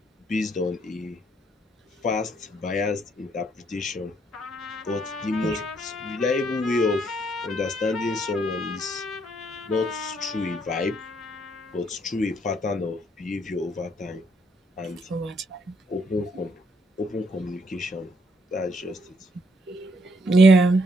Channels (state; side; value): normal; both; correlation 0.71